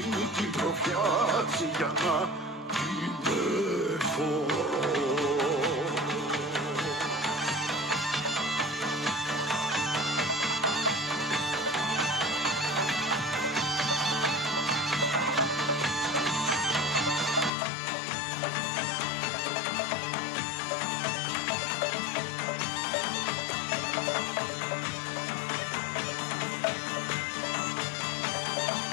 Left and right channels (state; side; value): drops out; right; at 17.5 s